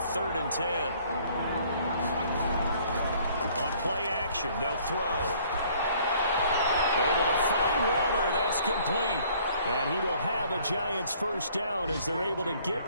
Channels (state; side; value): inverted; both; correlation -0.59